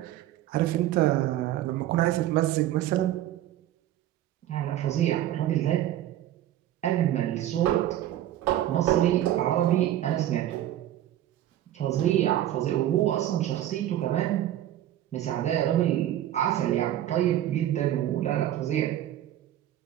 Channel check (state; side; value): quieter; left; 12.7 dB